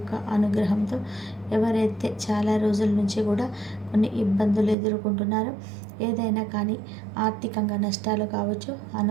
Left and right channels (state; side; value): drops out; left; at 4.8 s